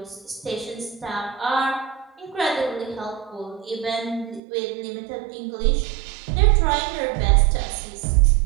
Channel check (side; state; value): left; drops out; at 4.4 s